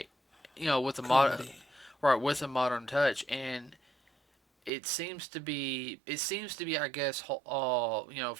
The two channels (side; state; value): left; drops out; at 4.7 s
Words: with a modern, Comedy. right, with a modern touch, and it seems to be, I guess,